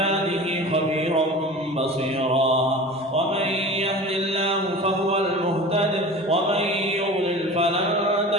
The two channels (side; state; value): both; normal; correlation 0.36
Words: خبيرا بصيرا. ومن يهد الله فهو المهتد ومن يضلل فلن